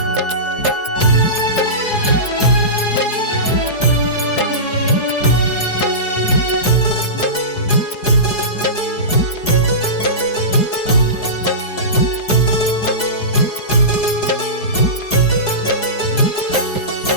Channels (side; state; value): right; late; 4.7 ms